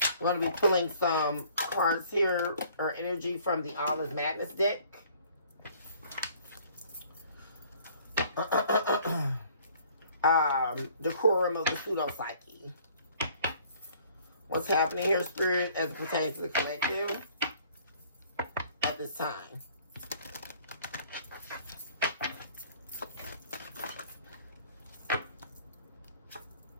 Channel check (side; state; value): both; inverted; correlation -0.56